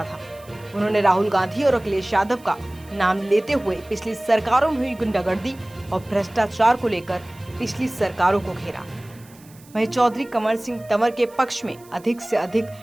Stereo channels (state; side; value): noise; right; hiss, 25 dB below the sound